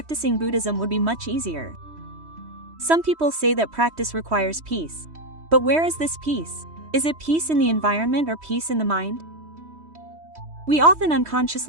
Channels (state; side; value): late; left; 3.1 ms